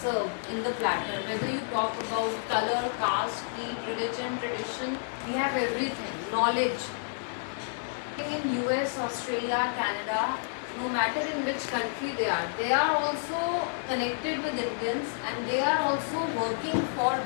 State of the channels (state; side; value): silent; right; digital silence